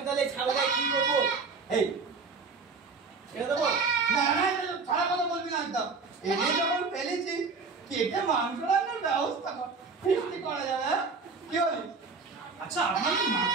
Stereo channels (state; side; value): quieter; left; 4.6 dB